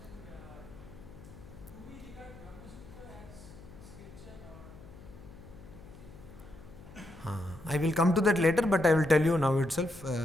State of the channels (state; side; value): noise; left; hum, 18 dB below the sound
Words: I will come to that later, but I will tell you now itself.